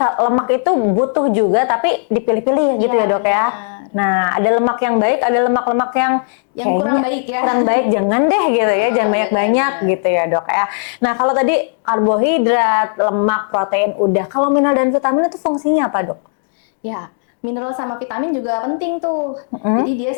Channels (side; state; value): right; silent; digital silence